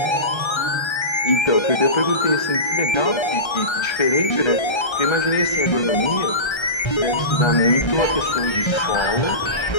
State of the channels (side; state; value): right; late; 1.3 ms